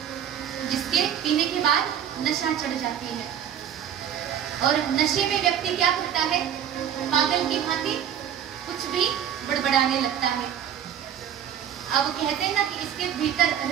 जिसके पीने के बाद नशा चढ़ जाती है, और नशे में व्यक्ति क्या करता है? पागल की भांति कुछ भी बड़बड़ाने लगता है। अब कहते हैं ना कि इसके भीतर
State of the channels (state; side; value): quieter; left; 9.4 dB